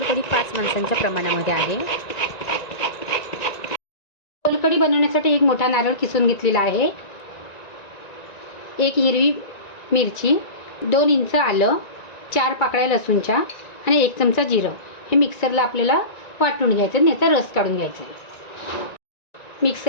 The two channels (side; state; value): right; late; 1.9 ms